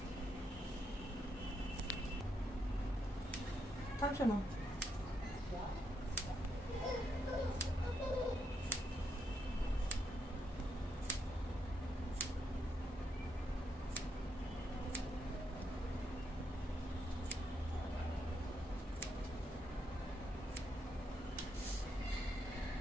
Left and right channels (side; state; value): both; normal; correlation 0.79